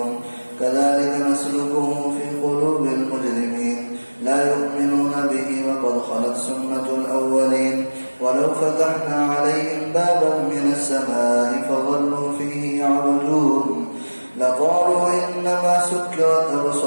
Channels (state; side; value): inverted; both; correlation -1.00